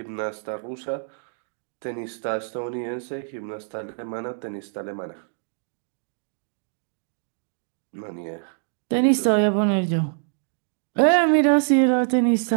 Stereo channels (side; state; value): left; silent; digital silence